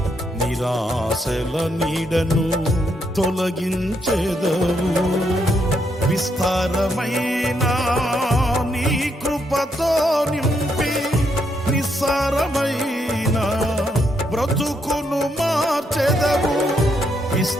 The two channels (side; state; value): both; normal; correlation 0.77